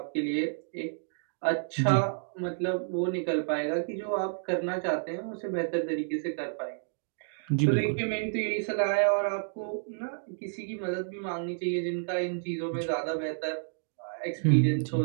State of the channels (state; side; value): silent; left; digital silence